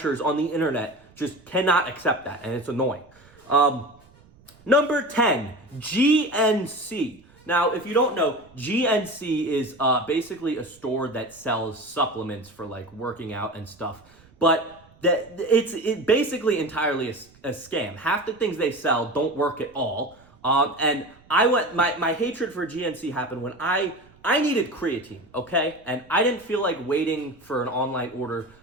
on the internet just cannot accept that, and it's annoying. Number 10, GNC. Now, if you don't know, GNC is basically a store that sells supplements for working out and stuff. But it's basically entirely a scam. Half the things they sell don't work at all. And my hatred for GNC happened when I needed creatine, okay? And I didn't feel like waiting for an online order.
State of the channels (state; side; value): noise; right; rumble, 28 dB below the sound